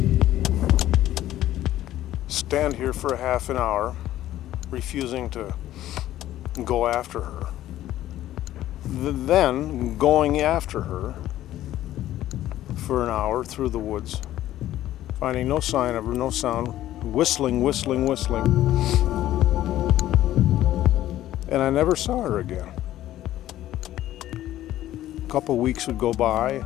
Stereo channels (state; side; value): quieter; right; 13.6 dB